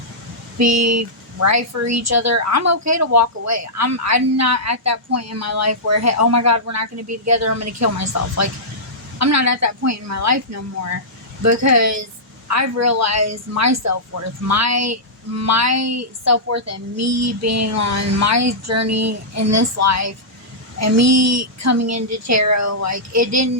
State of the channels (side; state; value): both; normal; correlation -0.14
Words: be right for each other, I'm okay to walk away. I'm not at that point in my life where, hey, oh my God, we're not gonna be together, I'm gonna kill myself. Like, I'm not at that point in my life no more, because I've realized my self-worth, my self-worth, and me being on my journey in this life, and me coming into tarot. Like, I